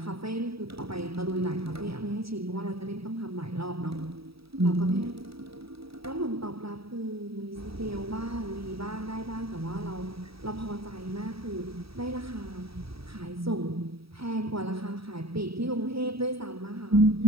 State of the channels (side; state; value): left; late; 0.77 ms